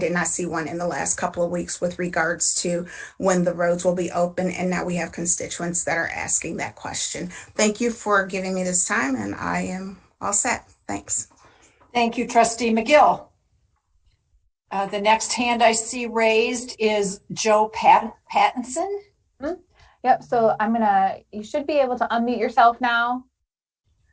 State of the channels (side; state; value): both; identical; correlation 1.00